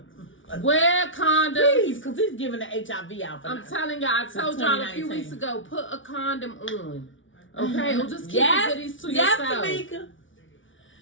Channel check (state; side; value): late; right; 0.56 ms